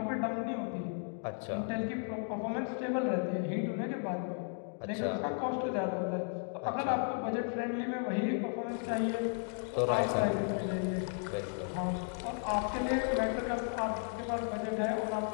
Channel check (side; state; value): right; silent; 55 dB below the other